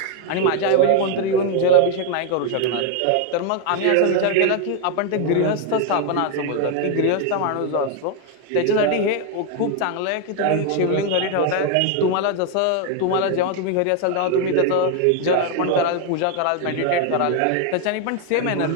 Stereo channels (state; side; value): different; both; correlation 0.01